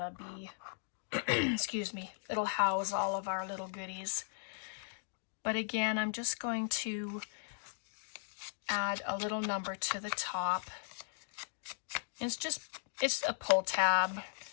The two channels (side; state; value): right; silent; digital silence